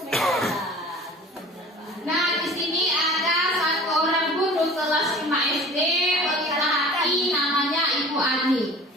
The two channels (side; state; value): both; normal; correlation 0.44